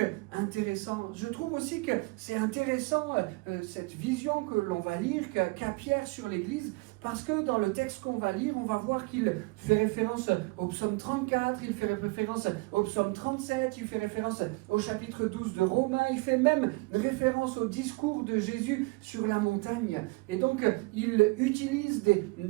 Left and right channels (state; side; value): quieter; left; 25.2 dB